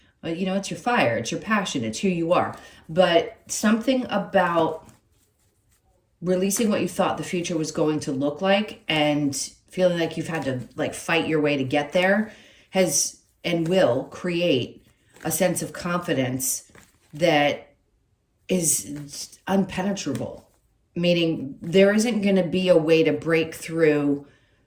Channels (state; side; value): identical; both; correlation 1.00